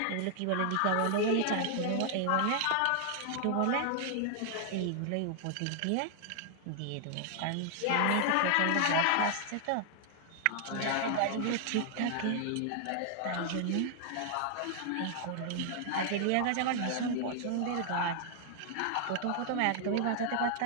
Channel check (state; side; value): different; both; correlation 0.00